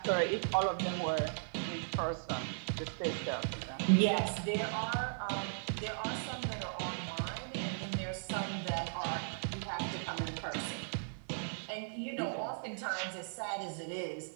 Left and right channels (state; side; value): silent; left; 53 dB below the other